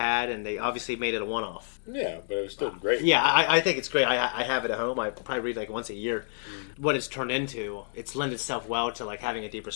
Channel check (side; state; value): right; silent; digital silence